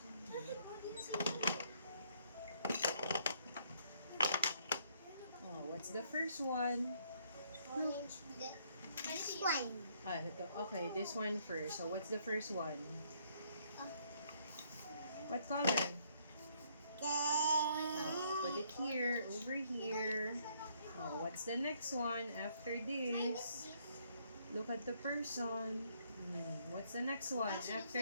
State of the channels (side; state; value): both; inverted; correlation -0.68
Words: What's the first one? Orange. This one. Okay, this one first. So, what's the first one? What color? Put it here, over here. What's the next one after this? Look at the person. What's the next one